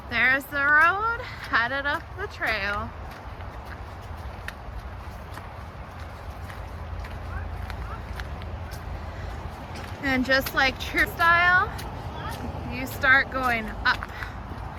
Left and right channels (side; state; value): both; identical; correlation 1.00